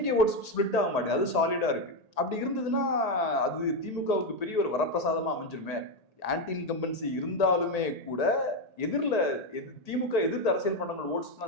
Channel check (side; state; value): right; late; 1.8 ms